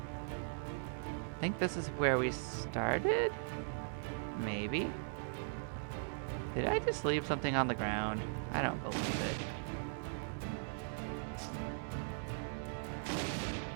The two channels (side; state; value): left; silent; digital silence